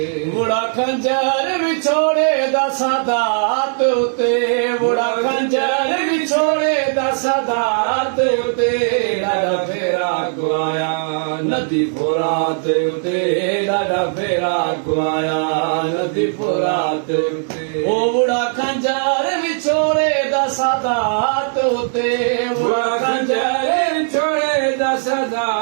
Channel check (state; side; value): silent; left; digital silence